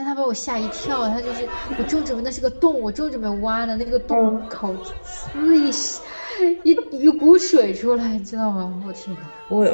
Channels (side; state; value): both; inverted; correlation -1.00